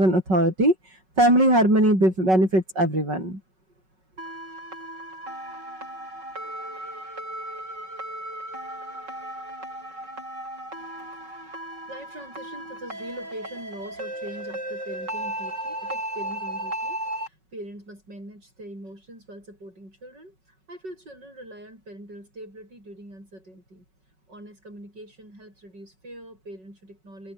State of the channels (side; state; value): left; late; 5.4 ms